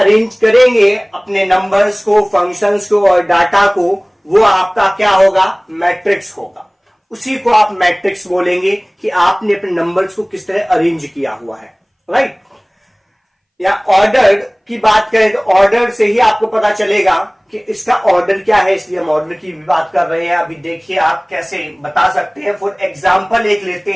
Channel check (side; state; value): both; identical; correlation 1.00